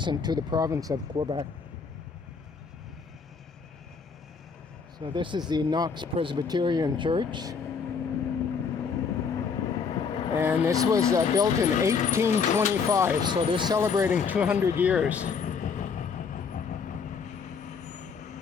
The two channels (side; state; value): right; quieter; 5.7 dB